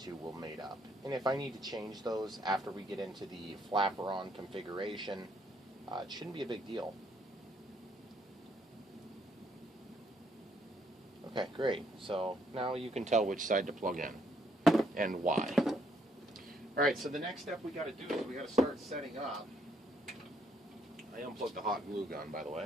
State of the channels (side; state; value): both; normal; correlation 0.70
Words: will mate up. And if I need to change those after we get into the Flapperon configuration, it shouldn't be a big deal. Okay, great. So now you can tell which side to plug in and why. Alright, so the next step we got to do is we got to start setting up. I unplugged the hot glue gun, by the